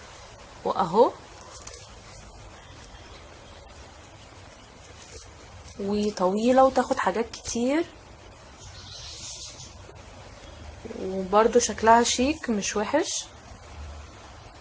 واهو وطويلة وتاخد حاجات كتير، وبرضو شكلها شيك مش وحش.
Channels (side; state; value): both; identical; correlation 1.00